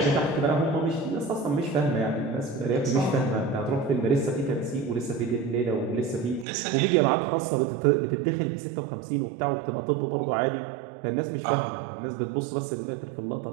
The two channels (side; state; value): left; drops out; at 6.5 s